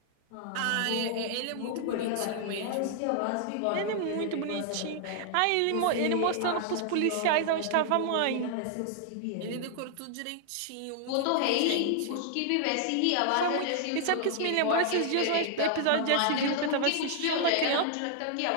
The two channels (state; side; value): different; both; correlation 0.00